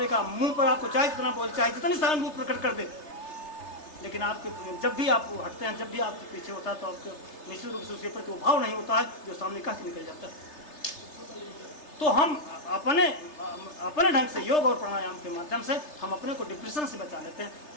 मुंह पर आपको चाहे जितना बोल, चाहे जितनी सहानुभूति प्रकट कर दे, लेकिन आपके जब भी आप हटते हैं, जब भी आपके पीछे होता है, तो आपके निश्चित रूप से उसके प्रति वो भाव नहीं होता है जो सामने कह के निकल जाता है। तो हम अपने ढंग से योग और प्राणायाम के माध्यम से हम अपने को डिप्रेशन से बचा लेते हैं,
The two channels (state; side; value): late; right; 3.3 ms